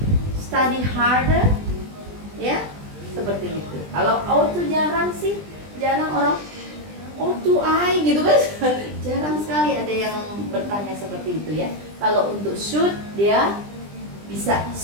study harder? Ya, seperti itu. Kalau ought to jarang sih, jarang orang ought to I gitu kan. Jarang sekali ada yang bertanya seperti itu ya. Kalau untuk should dia bisa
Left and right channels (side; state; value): left; late; 20 ms